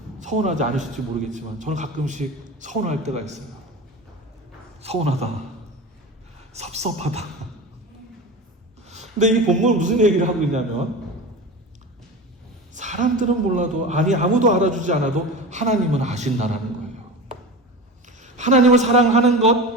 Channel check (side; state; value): both; normal; correlation 0.29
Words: 서운하지 않으실지 모르겠지만 저는 가끔씩 서운할 때가 있어요. 서운하다. 섭섭하다. 근데 이 본문은 무슨 얘기를 하고 있냐면 사람들은 몰라도 아무도 알아주지 않아도 하나님은 아신다라는 거예요. 하나님을 사랑하는